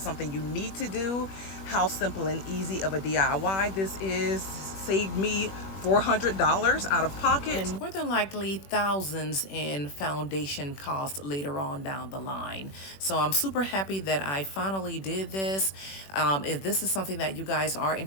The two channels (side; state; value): right; late; 21 ms